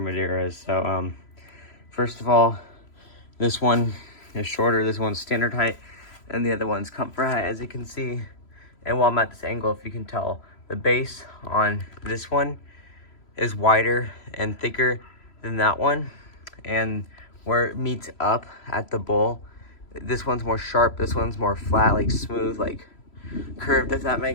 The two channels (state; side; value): late; right; 3.0 ms